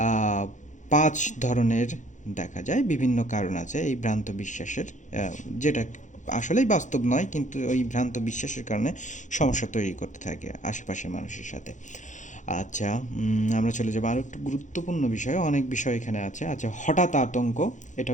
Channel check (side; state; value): right; late; 0.36 ms